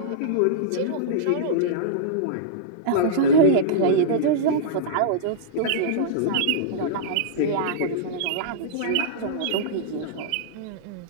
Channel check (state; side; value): different; both; correlation -0.03